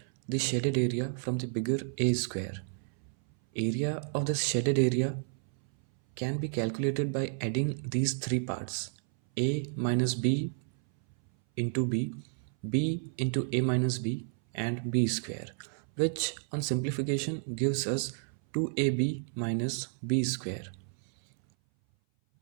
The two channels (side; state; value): left; silent; 57 dB below the other